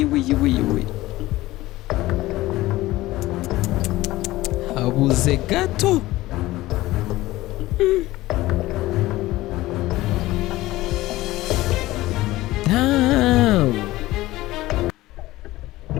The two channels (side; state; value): right; quieter; 17.6 dB